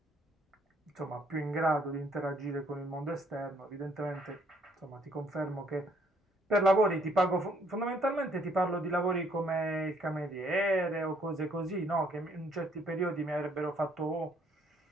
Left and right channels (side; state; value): both; normal; correlation 0.66